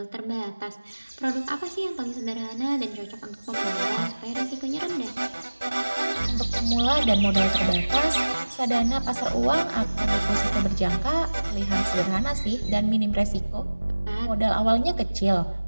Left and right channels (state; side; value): inverted; both; correlation -1.00